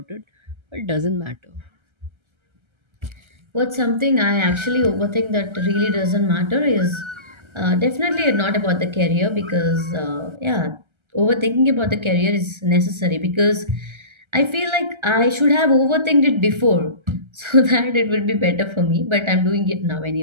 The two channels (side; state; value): left; late; 1.3 ms